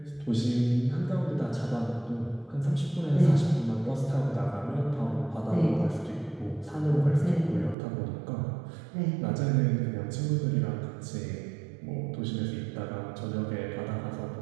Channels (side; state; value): left; drops out; at 7.8 s